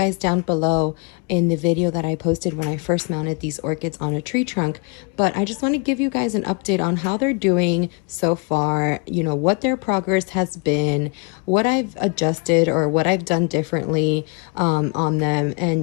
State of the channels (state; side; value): quieter; right; 32.4 dB